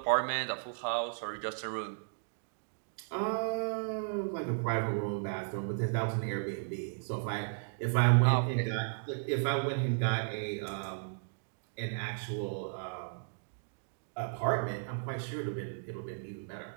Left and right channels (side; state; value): left; silent; digital silence